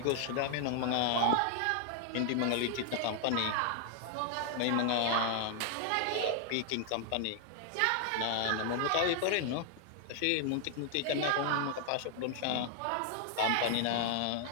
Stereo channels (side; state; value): both; different; correlation 0.00